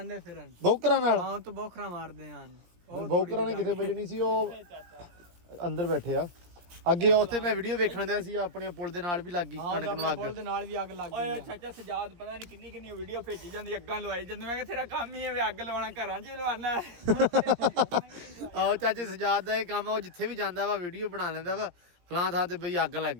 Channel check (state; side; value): late; left; 17 ms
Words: ਫਿਰਨ। ਬੌਕਰਾਂ ਨਾਲ? ਹਾਂ ਤੋਂ ਬੋਖਰਾ ਮਾਰਦੇ ਹਨ। ਬੌਕਰਾਂ ਨੇ ਕਿਥੇ ਵੱਜਣੀ ਸੀ? ਉਹ ਅੰਦਰ ਬੈਠੇ ਆ ਅੱਗੇ। ਉੱਥੇ ਮੈਂ ਵੀਡੀਓ ਵੇਖਣ ਦਿਆ ਸੀ, ਆਪਣੇ ਪੁਲ ਦੇ ਨਾਲ ਵੀ ਲੱਗ ਗਈ ਕਣਕ ਨੂੰ ਅੱਗ। ਪੁਲ ਦੇ ਨਾਲ ਵੀ ਅੱਗ ਲੱਗ ਗਈ। ਓਏ ਚਾਚਾ ਸਜਾਦ ਪਤਾ ਨਹੀਂ ਕਿੰਨੀ ਕਿੰਨੀ ਵੀਡੀਓ ਭੇਜੀ ਜਾਂਦੀ, ਅੱਗਾਂ ਲਵਾਈ ਜਾਂਦੇ। ਮੈਂ ਕਿਹਾ ਤੇਰਾ ਕੰਮ ਹੀ ਹੈ ਵੀ ਅੱਗ ਲਵਾਉਣਾ, ਘਰਾਂ 'ਚ ਵੀ ਲਵਾਉਣਾ। ਆਹੋ ਚਾਚੇ ਸਜਾਦ ਦਾ ਇਹ ਕੰਮ ਆ, ਉਹ ਜਿੱਥੇ ਵੀ ਜਾਂਦਾ ਵਾ ਵੀਡੀਓ ਬਣਾ ਲੈਂਦਾ ਵਾ ਫਲਾਂ ਥਾਂ ਤੇ ਬਈ ਅੱਗ ਲੱਗ